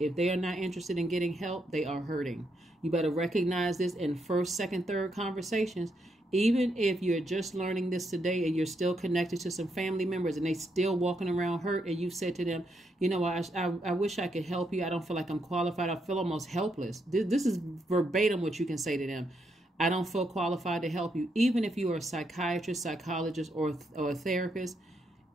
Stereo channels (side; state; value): both; normal; correlation 0.79